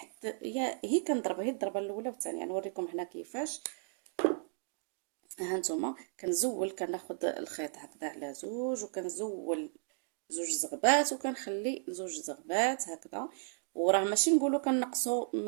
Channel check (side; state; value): left; silent; digital silence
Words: هي كنضربها هي الضربه الاولى والثانيه. نوريكم هنا كيفاش. ها نتوما كنزول، كناخذ الخيط هكذا على زوج وكنزول زوج زغبات وكنخلي زوج زغبات هكذا. وراه ماشي نقولوا كنقصوا